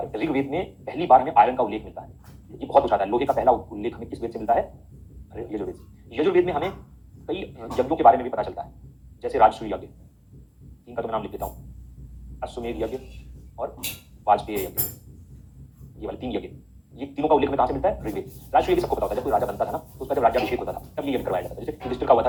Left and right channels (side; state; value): both; identical; correlation 1.00